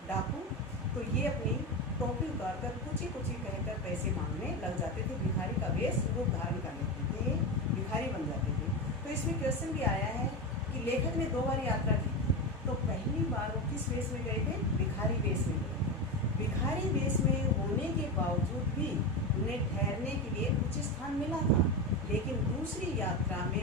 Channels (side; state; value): both; normal; correlation 0.18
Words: डाकू, तो ये अपनी टोपी उतार कर कुछ ही कहकर पैसे मांगने लग जाते थे। भिखारी का वेश रूप धारण कर लेते थे, भिखारी बन जाते थे। तो इसमें क्वेश्चन भी आया है कि लेखक ने 2 बार यात्रा की, तो पहली बार वो किस वेश में गए थे, भिखारी वेश में गए थे। भिखारी वेश में होने के बावजूद भी उन्हें ठहरने के लिए उचित स्थान मिला था, लेकिन दूसरी यात्रा में